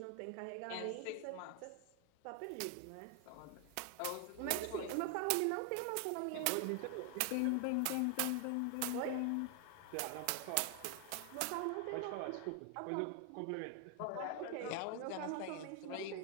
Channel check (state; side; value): different; both; correlation 0.00